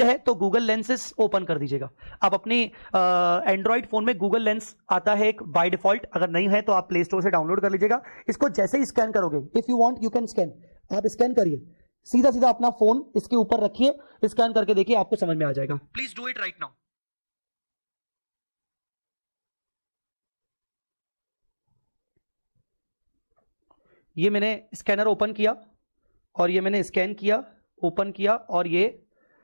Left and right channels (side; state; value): both; inverted; correlation -1.00